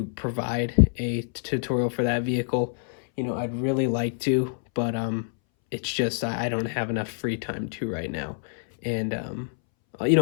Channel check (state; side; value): silent; right; 61 dB below the other